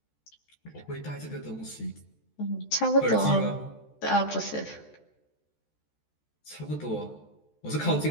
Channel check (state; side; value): late; right; 14 ms